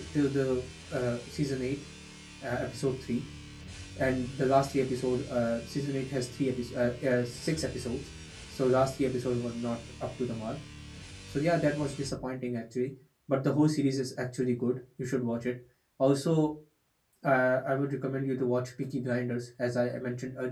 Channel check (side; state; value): both; identical; correlation 1.00